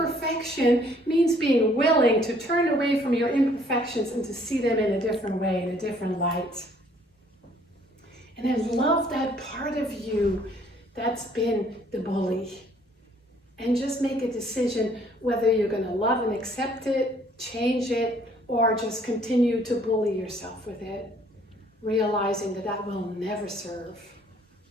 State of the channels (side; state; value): both; normal; correlation 0.61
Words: means being willing to turn away from your imperfections and to see them in a different way, in a different light. And I love that part of you that's been the bully. And just make a decision whether you're going to love and accept it, change it, or just continue to bully yourself with it, realizing that that will never serve.